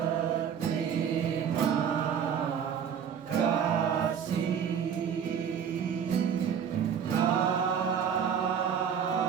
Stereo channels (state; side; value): quieter; left; 7.9 dB